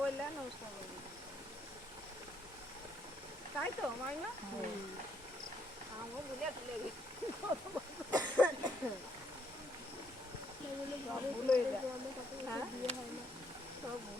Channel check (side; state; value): both; normal; correlation 0.72